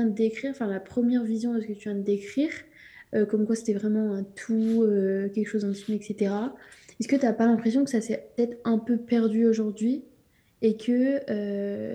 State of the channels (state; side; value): identical; both; correlation 1.00